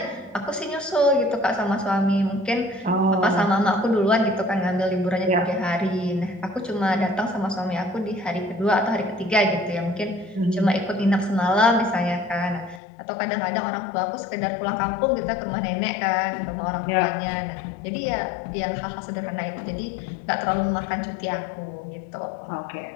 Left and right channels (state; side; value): drops out; right; at 12.8 s